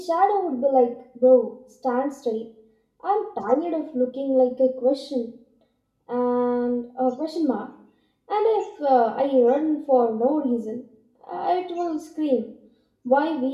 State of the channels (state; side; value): identical; both; correlation 1.00